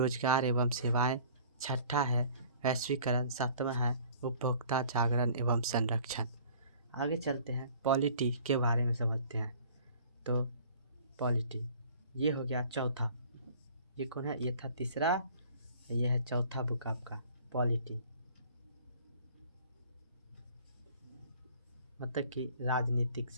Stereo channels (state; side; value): inverted; both; correlation -0.50